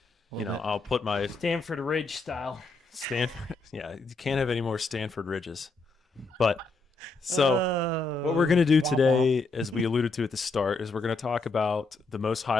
I'll put my Stanford Ridge style. Stanford. Yeah, you can't have any more Stanford Ridges. But so what we're going to do today, as we alluded to at the start, is we're going to talk about the most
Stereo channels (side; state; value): right; quieter; 3.6 dB